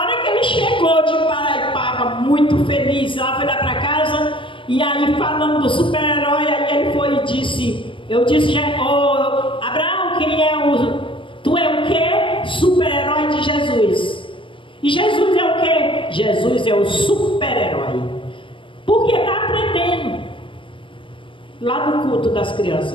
hora que ele chegou de Paraipaba, muito feliz, ela foi lá para casa, e aí falando do super-herói, aí ele foi e disse, não, tu é o quê? Super-herói de Jesus. E Jesus é o quê? Jesus é o super-herói. Porque está aprendendo. Lá no culto das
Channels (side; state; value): right; late; 0.25 ms